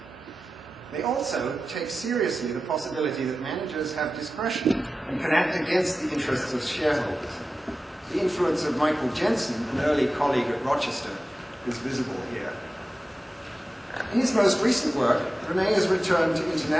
They also take seriously the possibility that managers have discretion and can act against the interests of shareholders. The influence of Michael Jensen, an early colleague at Rochester, is visible here. In his most recent work, René has returned to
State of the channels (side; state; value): both; normal; correlation 0.94